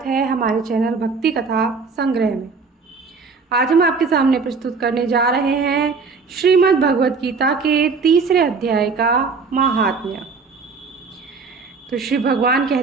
है हमारे चैनल भक्ति कथा संग्रह में। आज हम आपके सामने प्रस्तुत करने जा रहे हैं श्रीमद् भगवत गीता के तीसरे अध्याय का महात्म्य। तो श्री भगवान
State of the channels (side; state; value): left; quieter; 4.8 dB